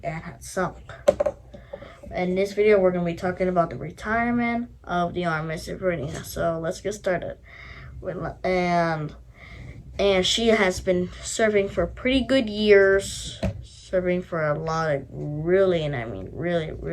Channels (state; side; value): identical; both; correlation 1.00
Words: and had sunk. In this video, we're going to be talking about the retirement of the RMS Ivernia. So let's get started. And she has been serving for pretty good years. Serving for a lot of really